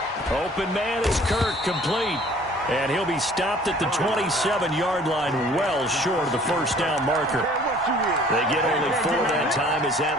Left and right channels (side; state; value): both; normal; correlation 0.53